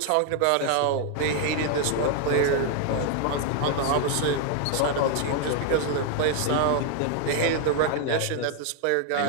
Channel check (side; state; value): both; different; correlation 0.00